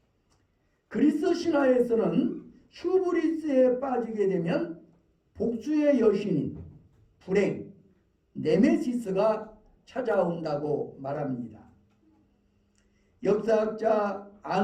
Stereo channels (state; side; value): identical; both; correlation 1.00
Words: 그리스 신화에서는 휴브리스에 빠지게 되면 복수의 여신인 불행, 네메시스가 찾아온다고 말합니다. 역사학자